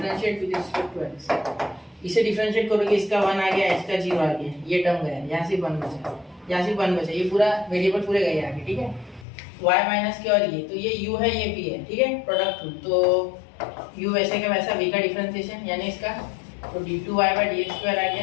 with respect to x। इसे डिफरेंशिएट करोगे, इसका 1 आ गया, इसका 0 आ गया, ये टर्म गया, यहाँ से 1 बचा, यहाँ से 1 बचा, ये पूरा वेरिएबल पूरे गए आगे, ठीक है। y माइनस के और ये, तो ये u है, ये v है, ठीक है, प्रोडक्ट रूल। तो u वैसे का वैसा, v का डिफरेंशिएशन यानी इसका, तो d2y बाय dx स्क्वायर आ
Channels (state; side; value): drops out; right; at 9.2 s